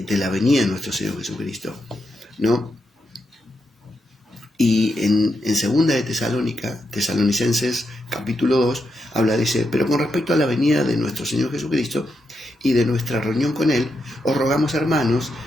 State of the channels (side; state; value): both; normal; correlation 0.84